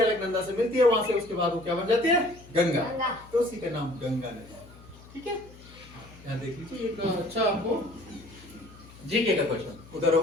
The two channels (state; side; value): noise; left; hum, 21 dB below the sound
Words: अलकनंदा से मिलती है वहां से। उसके बाद वो क्या बन जाती है, गंगा, तो उसी का नाम गंगा नदी, ठीक है। यहाँ देख लीजिए एक अच्छा आपको जीके का क्वेश्चन उधर हो